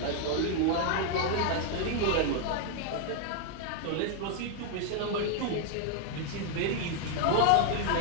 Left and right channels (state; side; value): different; both; correlation 0.00